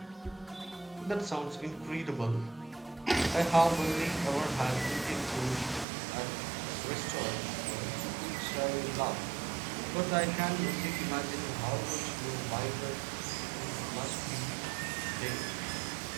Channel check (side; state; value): left; drops out; at 5.9 s